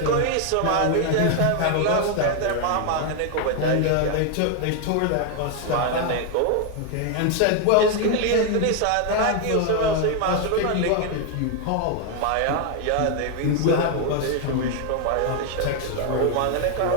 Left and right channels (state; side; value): different; both; correlation 0.01